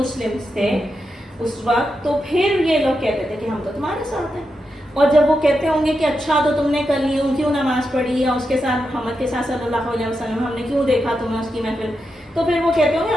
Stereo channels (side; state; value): both; normal; correlation 0.86